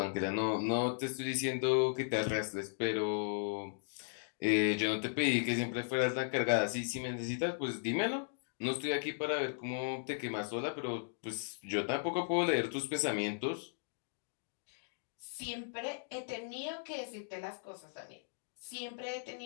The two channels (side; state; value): right; silent; digital silence